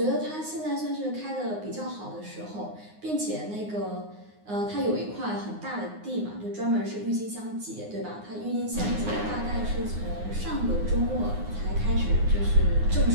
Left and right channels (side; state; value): left; late; 9.6 ms